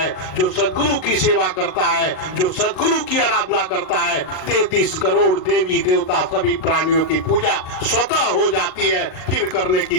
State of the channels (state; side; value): late; right; 38 ms